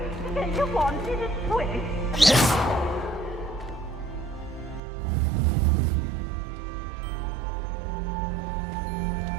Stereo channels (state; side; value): drops out; left; at 4.8 s